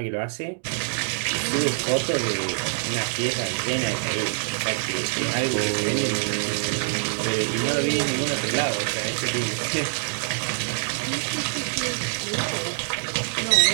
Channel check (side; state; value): left; silent; digital silence